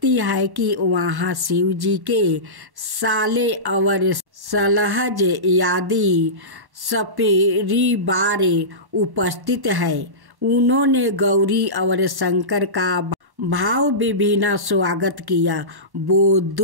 है कि वहाँ शिव जी के साले और सलहज आदि सपरिवार उपस्थित है। उन्होंने गौरी और शंकर का भाव विभिन्न स्वागत किया। वो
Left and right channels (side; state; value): left; late; 1.1 ms